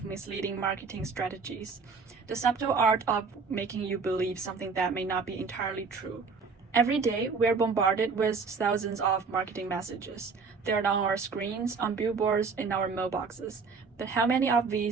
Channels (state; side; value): quieter; left; 4.9 dB